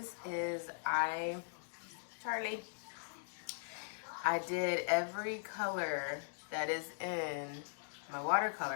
I did every color that is in my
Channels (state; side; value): silent; right; digital silence